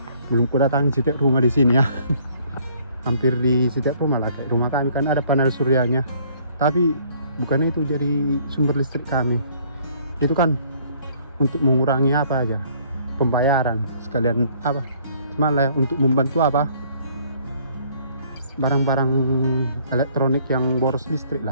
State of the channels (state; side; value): inverted; both; correlation -0.60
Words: belum ku datangi setiap rumah di sini ya. Hampir di setiap rumah lah, kayak rumah kami kan ada panel suryanya, tapi bukannya itu jadi sumber listrik kami. Itu kan untuk mengurangi apa aja, pembayaran sekalian apa, cuma lah untuk membantu apa, barang-barang elektronik yang boros listrik